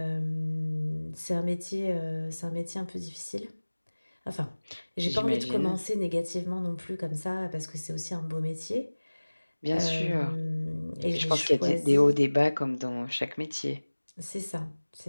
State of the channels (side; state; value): both; inverted; correlation -1.00